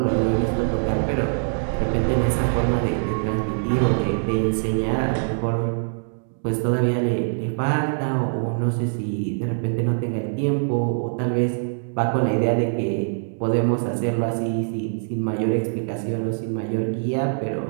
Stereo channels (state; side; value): silent; left; digital silence